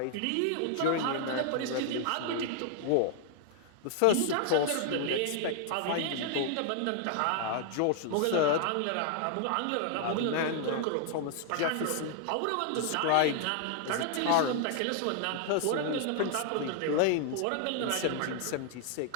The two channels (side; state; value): both; different; correlation 0.00